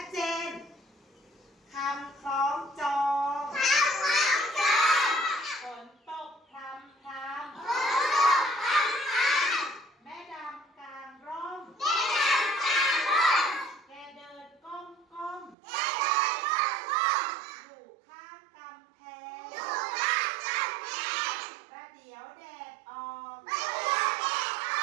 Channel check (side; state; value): left; drops out; at 15.6 s